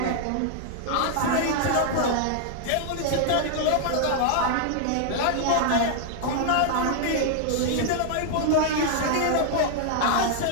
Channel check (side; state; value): both; different; correlation -0.01